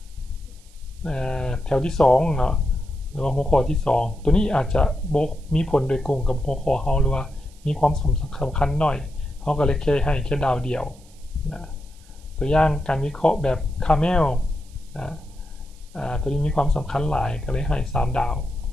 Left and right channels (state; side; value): noise; right; hiss, 27 dB below the sound